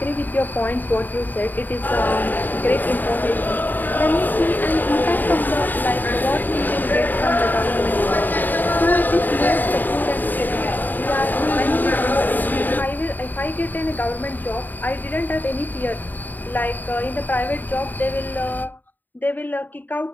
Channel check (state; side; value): late; right; 0.088 ms